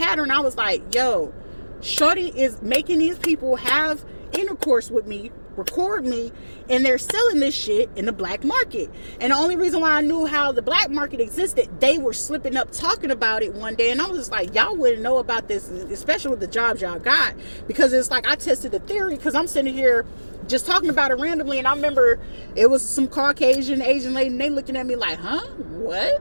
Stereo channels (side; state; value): both; inverted; correlation -1.00